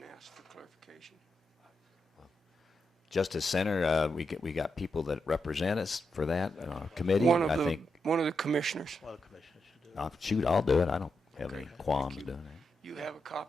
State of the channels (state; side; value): normal; both; correlation 0.85